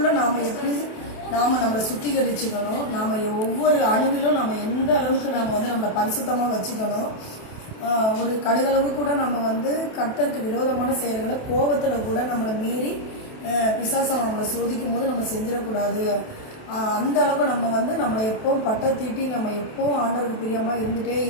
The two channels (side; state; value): right; late; 28 ms